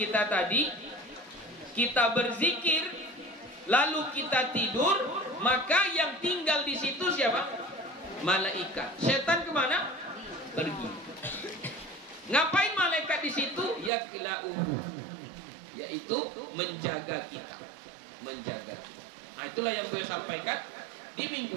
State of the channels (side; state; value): left; drops out; at 13.9 s